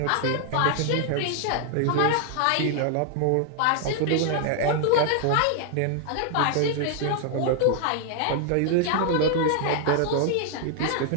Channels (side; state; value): both; different; correlation 0.00